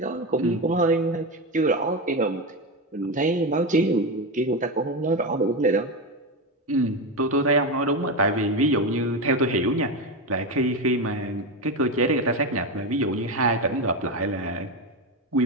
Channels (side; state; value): both; normal; correlation 0.15